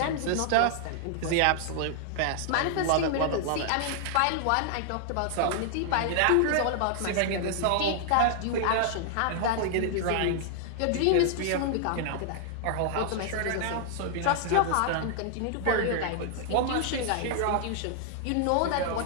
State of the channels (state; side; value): different; both; correlation 0.00